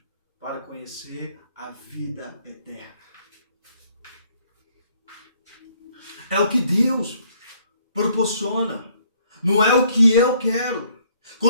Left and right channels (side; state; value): both; inverted; correlation -0.65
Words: para conhecer a vida eterna. É o que Deus proporciona. Não é o que eu quero.